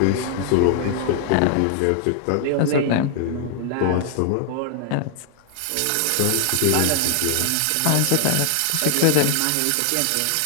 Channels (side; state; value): both; different; correlation 0.00